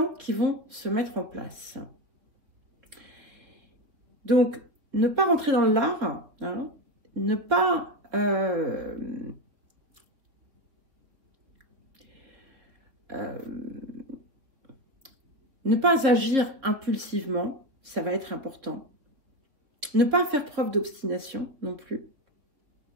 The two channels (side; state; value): left; late; 3.5 ms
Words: qui vont se mettre en place. Donc, ne pas rentrer dans l'art, hein, ne pas agir impulsivement, ça va être important. Ne pas faire preuve d'obstination non plus.